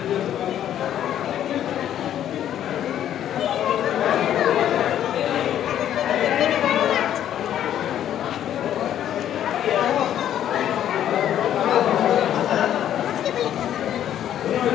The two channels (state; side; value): quieter; right; 10.8 dB